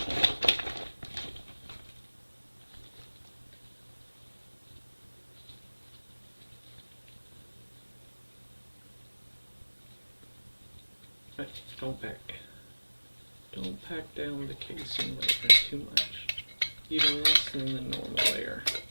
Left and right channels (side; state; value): both; inverted; correlation -1.00